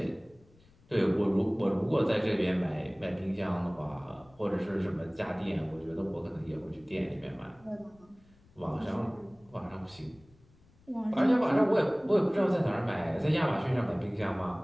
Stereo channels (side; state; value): left; noise; rumble, 29 dB below the sound